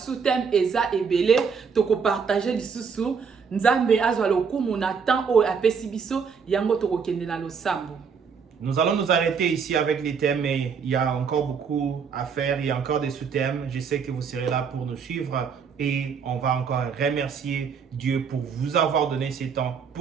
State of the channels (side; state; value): left; quieter; 6.1 dB